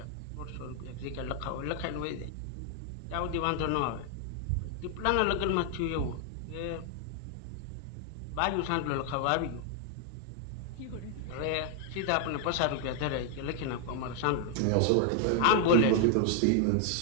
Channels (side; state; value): both; different; correlation 0.00